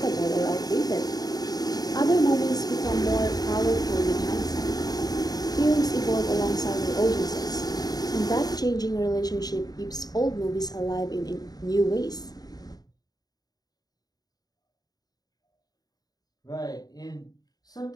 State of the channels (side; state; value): right; late; 0.19 ms